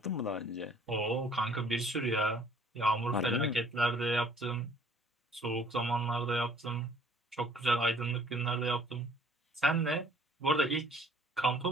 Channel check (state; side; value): normal; both; correlation 0.57